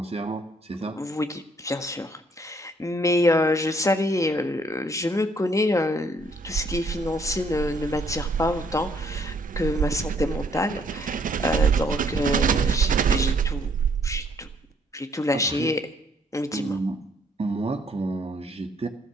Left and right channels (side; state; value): both; normal; correlation 0.66